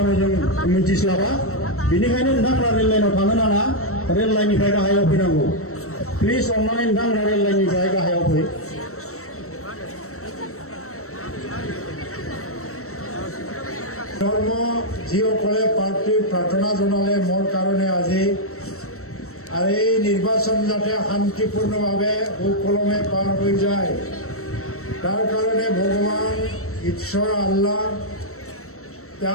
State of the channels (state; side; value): late; right; 0.63 ms